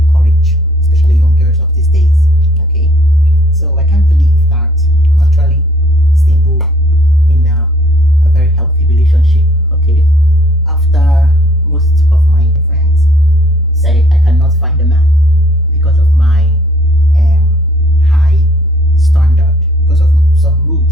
especially young girls of these days. Okay, so I can't believe that I'm actually stable in a very healthy relationship. Okay, after most of my friends say I cannot find a man because of my um, high standard, because of some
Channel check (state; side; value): noise; left; rumble, 25 dB below the sound